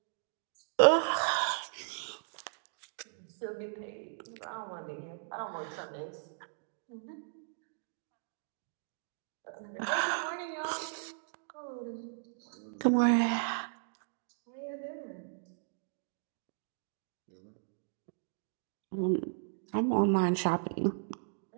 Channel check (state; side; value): silent; left; digital silence